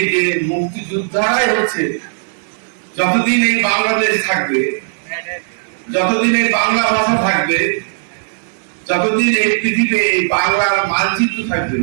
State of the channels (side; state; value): left; silent; digital silence